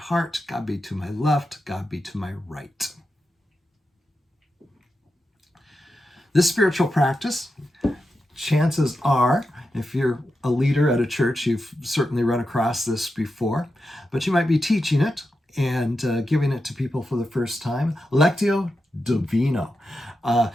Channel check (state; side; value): normal; both; correlation 0.89